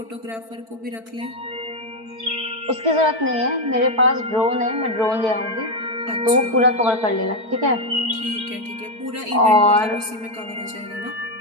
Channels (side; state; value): left; late; 4.5 ms